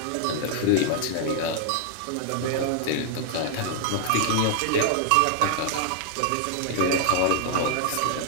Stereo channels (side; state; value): both; different; correlation 0.00